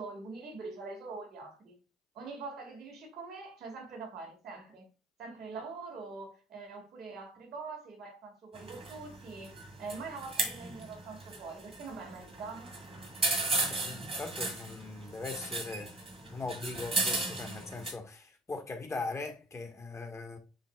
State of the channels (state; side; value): normal; both; correlation 0.48